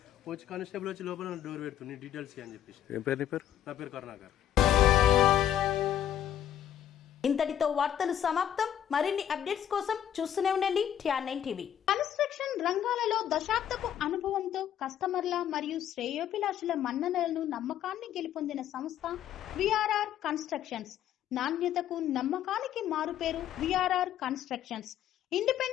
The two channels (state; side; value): quieter; right; 10.5 dB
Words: వచ్చి కానిస్టేబుల్ వచ్చి లోపల డోర్ పెడుతుంది నీ డీటెయిల్స్ అని చెప్పేసి. నా పేరు కరుణాకర్. ఇంతటితో వార్తలు సమాప్తం. మరిన్ని అప్డేట్స్ కోసం చూస్తూనే ఉండండి TR9 టీవీ. కన్స్ట్రక్షన్ రంగాలలో దశాబ్దపు అనుభవంతో కస్టమర్ల మరియు శ్రేయోభిలాషుల మన్ననలను, నమ్మకాన్ని గెలుపొందిన సంస్థ VRR కన్స్ట్రక్షన్స్. నాణ్యతకు, నమ్మకానికి మారుపేరు VRR constructions.